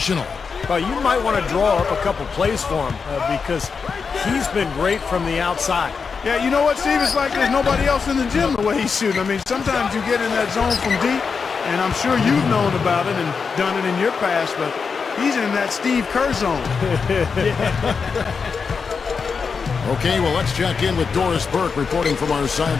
Well, you might want to draw up a couple plays for him because he's been great from the outside. Yeah, you know what, Steve? It's like there's nobody else in the gym the way he's shooting. I mean, sometimes you get in that zone from deep, and I'm sure you've known about it and done it in your past, but he's in that Steve Kerr zone. Okay, well, let's check in with Doris Burke reporting from our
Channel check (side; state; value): right; quieter; 5.4 dB